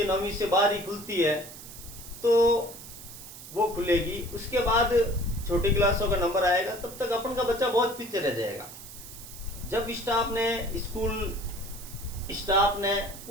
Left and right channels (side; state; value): right; noise; hiss, 14 dB below the sound